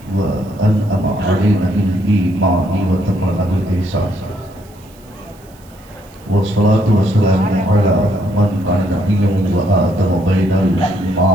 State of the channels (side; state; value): right; noise; hiss, 28 dB below the sound